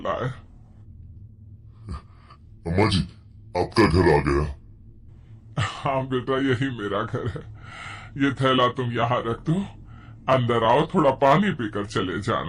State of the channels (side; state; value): both; identical; correlation 1.00